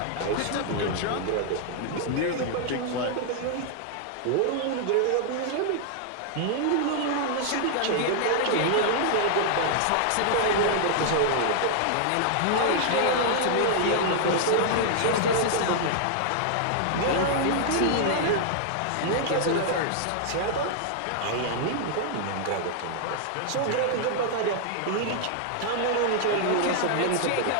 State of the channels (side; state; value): both; different; correlation -0.01